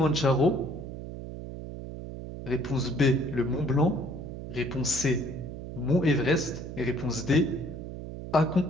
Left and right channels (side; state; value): right; noise; hum, 9 dB below the sound